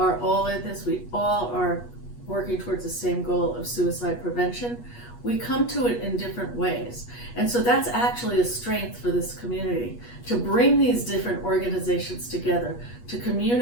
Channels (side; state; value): right; late; 8.3 ms